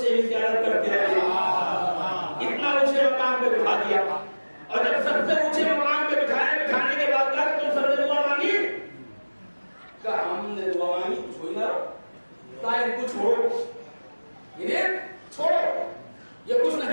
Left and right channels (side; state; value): both; inverted; correlation -1.00